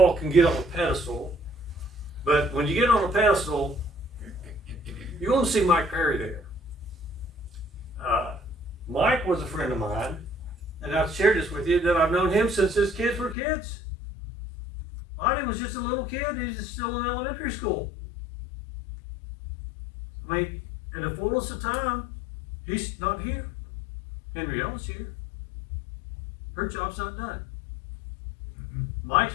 can get on a pedestal, but when you get on a pedestal, you're going to see Mike Perry there. Mike was a friend of mine, and I've shared this with you, that I've known him since his kids were kids. Lonnie was just a little kid. He's still in elementary school. I mean, in the fullness of time, he's not here. Henrietta's here. Her job's not done.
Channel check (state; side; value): drops out; right; at 13.4 s